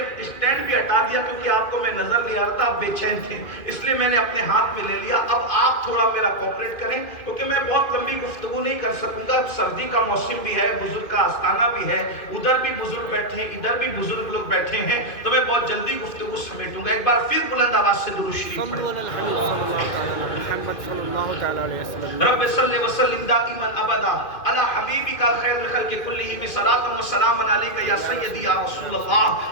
اسٹینڈ بھی ہٹا دیا کیونکہ آپ کو میں نظر نہیں آ رہا تھا، آپ بے چین تھے، اس لیے میں نے اپنے ہاتھ میں لے لیا. اب آپ تھوڑا میرا کوپریٹ کریں کیونکہ میں بہت لمبی گفتگو نہیں کر سکوں گا. سردی کا موسم بھی ہے، بزرگ کا آستانہ بھی ہے، ادھر بھی بزرگ بیٹھے ہیں، ادھر بھی بزرگ لوگ بیٹھے ہیں، تو میں بہت جلدی گفتگو سمیٹوں گا. ایک بار پھر بلند آواز سے درود شریف پڑھیں. رب صلی وسلم دائما ابدا علی حبیبک خیر الخلق کلہم. صلاۃ و سلام علیک یا سیدی یا رسول اللہ.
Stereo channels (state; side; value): late; right; 2.5 ms